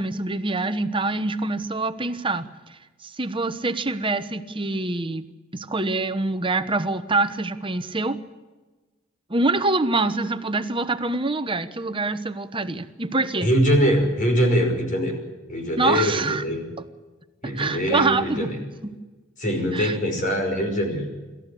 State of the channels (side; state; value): both; normal; correlation 0.37